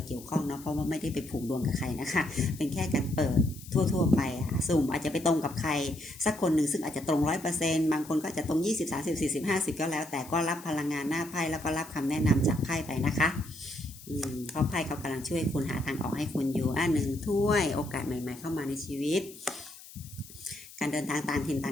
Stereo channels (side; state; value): left; noise; hiss, 18 dB below the sound